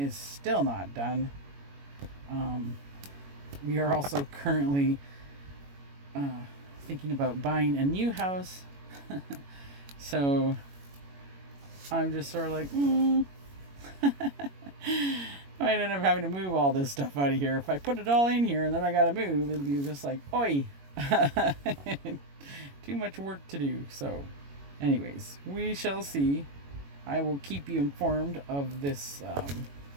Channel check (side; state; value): left; late; 21 ms